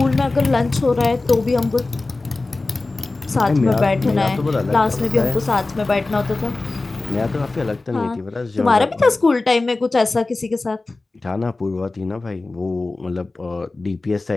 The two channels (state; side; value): quieter; right; 3.3 dB